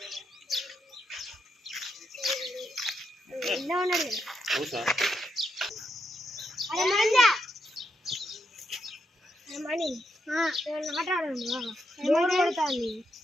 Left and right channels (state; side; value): normal; both; correlation 0.81